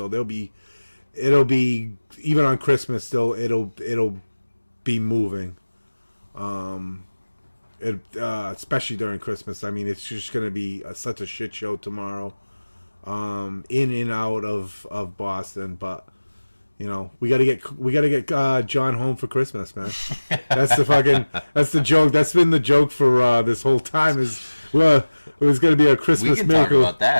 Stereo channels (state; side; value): inverted; both; correlation -1.00